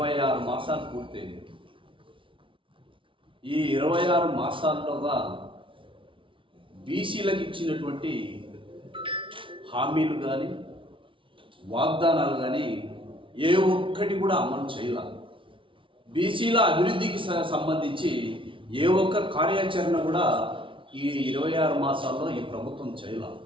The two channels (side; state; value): left; late; 0.25 ms